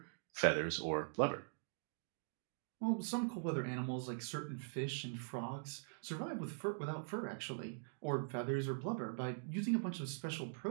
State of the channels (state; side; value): silent; left; digital silence